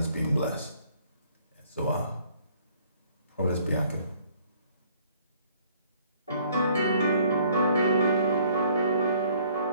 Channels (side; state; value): both; inverted; correlation -0.61